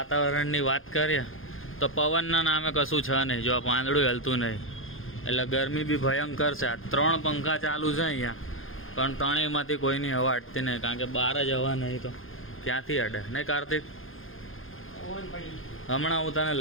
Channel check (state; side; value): late; right; 0.59 ms